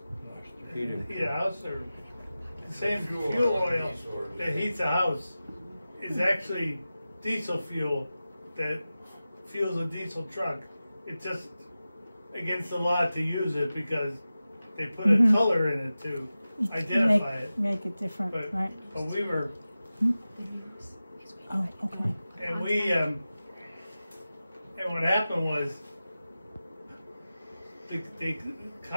heat a house, or the same fuel oil that heats a house is actually diesel fuel that fuels a diesel truck. It's just against the law to use it because they put a color in it to identify it. Make it different, But right? we were, Oh, okay. and we and what happened was they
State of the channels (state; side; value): inverted; both; correlation -0.95